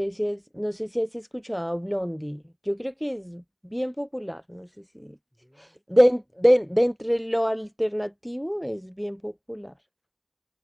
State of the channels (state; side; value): identical; both; correlation 1.00